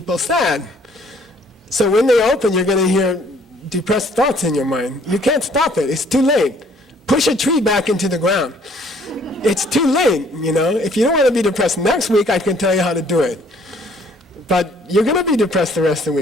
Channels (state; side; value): normal; both; correlation 0.61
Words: sad. So when they open, you're going to hear depressed thoughts in your mind. You can't stop it. It's too late. Push a tree back into the ground. It's too late, you know. If you don't want to be depressed next week, I can tell you how to do it. But you're going to be depressed the rest of the